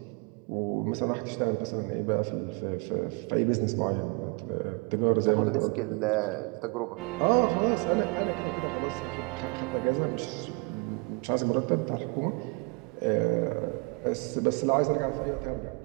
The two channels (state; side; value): quieter; left; 31.2 dB